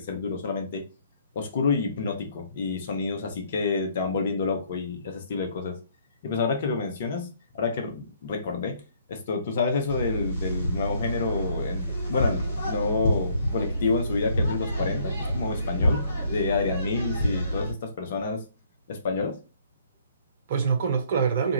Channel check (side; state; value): both; inverted; correlation -0.64